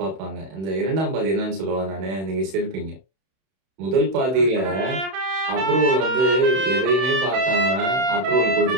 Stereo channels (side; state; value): left; late; 31 ms